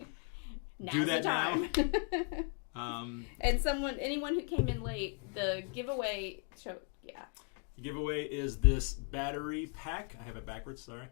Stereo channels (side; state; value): right; quieter; 36.4 dB